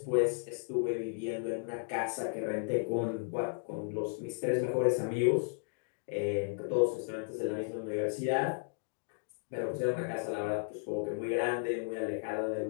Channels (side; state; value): right; silent; digital silence